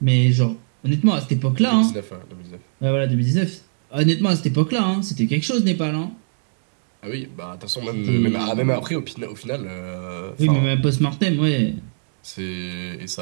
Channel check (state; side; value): silent; left; digital silence